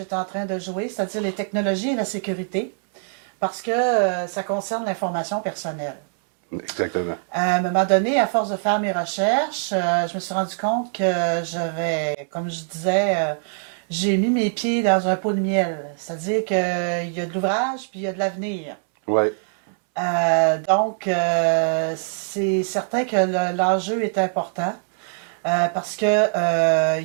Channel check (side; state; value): left; silent; 64 dB below the other